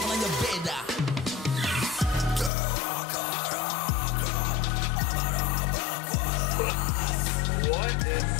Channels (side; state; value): right; drops out; at 2.5 s